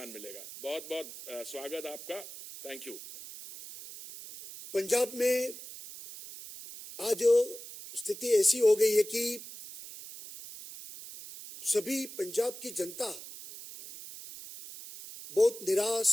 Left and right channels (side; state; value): right; noise; hiss, 13 dB below the sound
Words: मिलेगा। बहुत बहुत स्वागत आपका। Thank you. पंजाब में आज स्थिति ऐसी हो गई है कि सभी पंजाब की जनता बहुत निराश